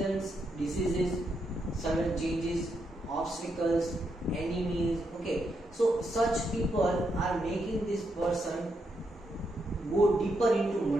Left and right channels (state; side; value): normal; both; correlation 0.81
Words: diseases, sudden changes, obstacles, enemies. Okay, so such people are making this person go deeper into